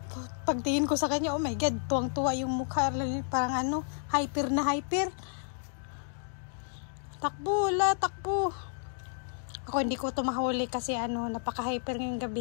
Pagtingin ko sa kanya, oh my God, tuwang-tuwa yung mukha, parang ano, hyper na hyper. Takbo, takbo. Ako hindi ko ito mahuli kasi ano, napaka-hyper ngayong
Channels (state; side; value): silent; right; 57 dB below the other